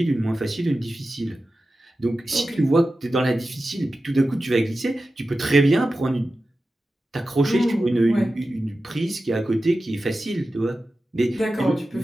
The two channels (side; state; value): both; normal; correlation 0.93